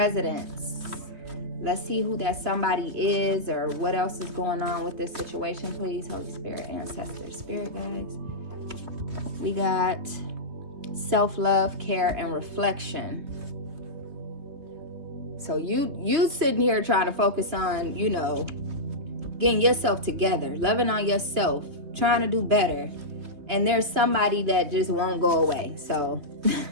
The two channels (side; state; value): left; late; 3.2 ms